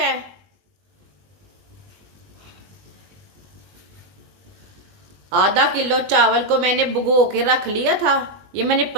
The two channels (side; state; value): left; late; 20 ms